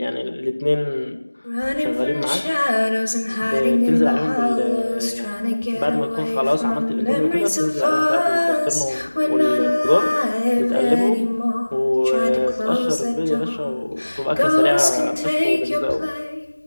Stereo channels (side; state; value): both; inverted; correlation -1.00